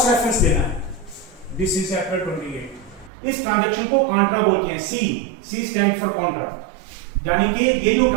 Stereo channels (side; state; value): left; drops out; at 3.1 s